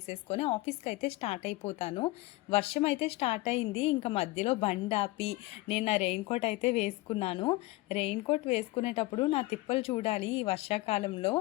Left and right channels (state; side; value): quieter; right; 20.4 dB